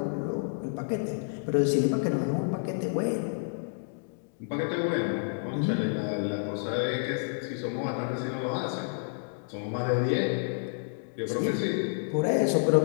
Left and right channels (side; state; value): right; silent; digital silence